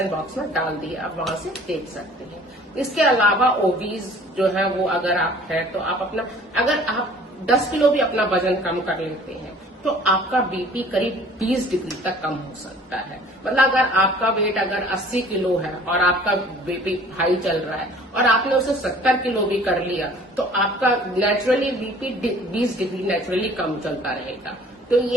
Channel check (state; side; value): normal; both; correlation 0.51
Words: बॉक्स में डाल दी है, आप वहां से देख सकते हैं। इसके अलावा ओबीज जो है वो अगर आप है तो आप अपना अगर आप 10 किलो भी अपना वजन कम कर लेते हैं तो आपका बीपी करीब 20 डिग्री तक कम हो सकता है। मतलब अगर आपका वेट अगर 80 किलो है और आपका बीपी हाई चल रहा है और आपने उसे 70 किलो भी कर लिया तो आपका नेचुरली बीपी 20 डिग्री नेचुरली कम चलता रहेगा। तो